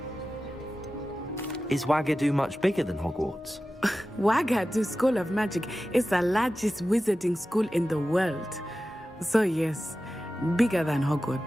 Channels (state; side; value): normal; both; correlation 0.94